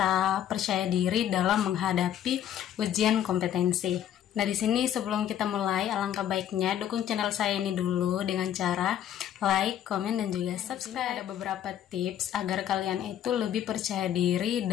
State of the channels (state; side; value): quieter; right; 10.5 dB